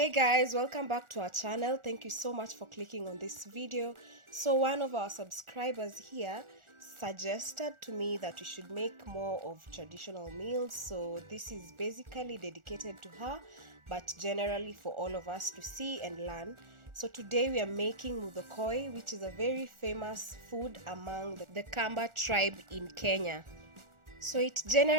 guys, welcome back to our channel. Thank you so much for clicking on this video. So one of our subscribers here suggested to me that we should make more of traditional meals, so this is basically dedicated to her, but generally for all of us to see and learn. So today we are making MUTHOKØI, which is a very famous food among the Kamba tribe in Kenya. So it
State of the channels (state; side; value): late; left; 1.4 ms